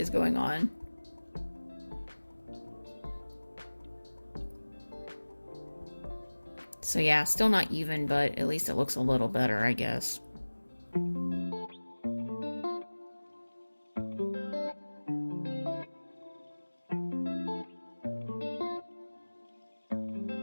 going on? So yeah, still not even, but at least it looks a little better, I guess.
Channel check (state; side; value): inverted; both; correlation -1.00